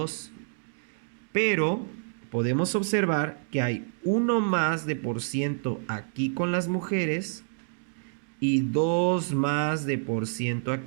Pero podemos observar que hay 1 más de por ciento aquí con las mujeres y 2 más de por ciento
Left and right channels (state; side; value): silent; left; digital silence